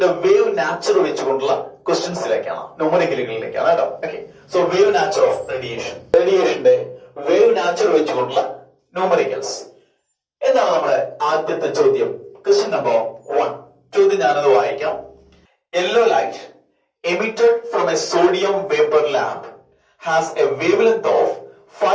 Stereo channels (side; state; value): both; identical; correlation 1.00